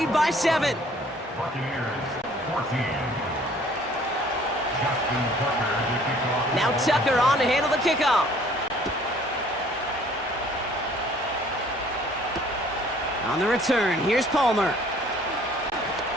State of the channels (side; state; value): both; normal; correlation 0.56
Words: by 7. Buccaneers 14. Now Tucker on to handle the kickoff. On the return, here's Palmer.